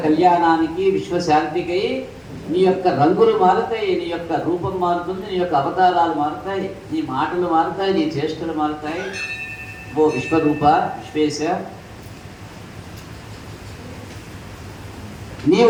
కళ్యాణానికి, విశ్వశాంతికై నీ యొక్క రంగులు మారుతాయి, నీ యొక్క రూపం మారుతుంది, నీ యొక్క అవతారాలు మారుతాయి, నీ మాటలు మారుతాయి, నీ చేష్టలు మారుతాయి. ఓ విశ్వరూప, విశ్వేశ,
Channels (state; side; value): identical; both; correlation 1.00